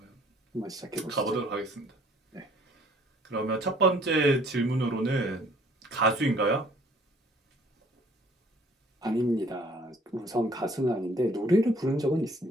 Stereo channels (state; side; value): normal; both; correlation 0.58